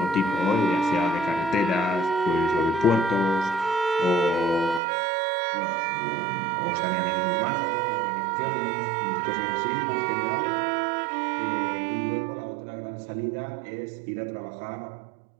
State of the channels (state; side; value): drops out; left; at 4.8 s